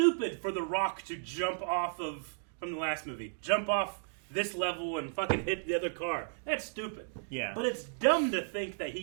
for The Rock to jump off of, from the last movie, jump off this level and fucking hit the other car. That's stupid. Yeah. But it's dumb to think that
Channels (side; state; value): left; silent; digital silence